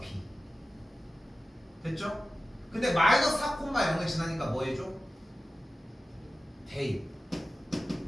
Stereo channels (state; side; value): normal; both; correlation 0.95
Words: b. 됐죠? 근데 마이너스 4 콤마 0을 지나니까 뭐 해줘? 대입.